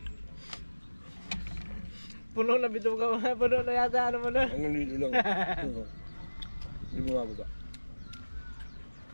Puno na bito ka. Puno na yata ano mo na. Hanggang dito lang. Hindi bumababa.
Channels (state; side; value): inverted; both; correlation -1.00